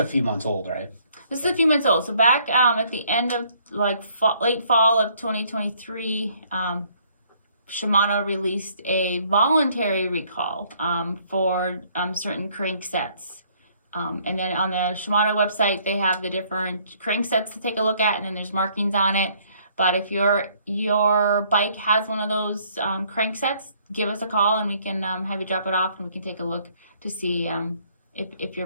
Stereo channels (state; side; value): inverted; both; correlation -0.64